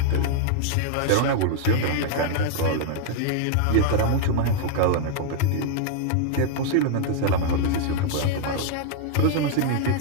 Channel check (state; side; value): different; both; correlation -0.01